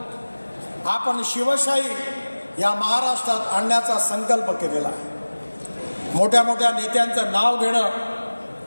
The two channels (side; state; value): both; inverted; correlation -1.00